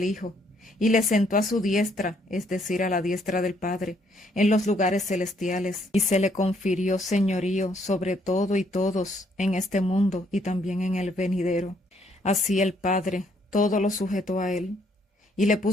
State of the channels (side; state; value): both; normal; correlation 0.69